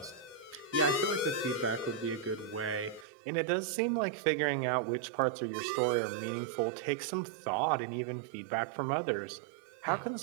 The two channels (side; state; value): left; drops out; at 3.1 s